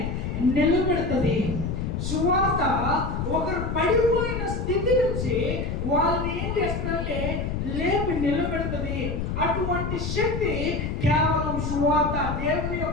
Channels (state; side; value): noise; left; rumble, 3 dB below the sound